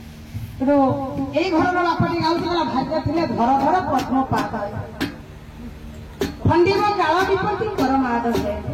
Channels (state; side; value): identical; both; correlation 1.00